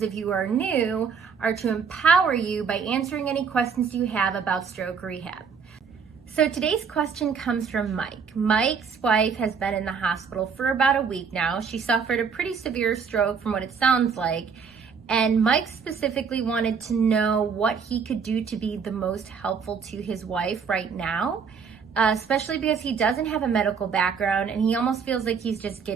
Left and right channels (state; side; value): quieter; left; 6.1 dB